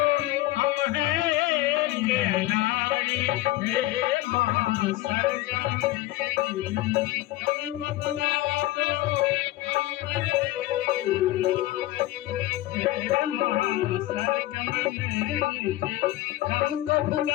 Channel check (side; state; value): right; quieter; 16.6 dB